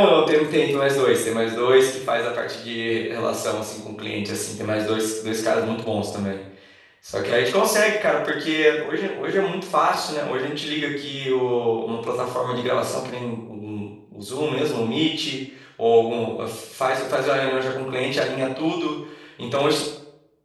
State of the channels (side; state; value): both; identical; correlation 1.00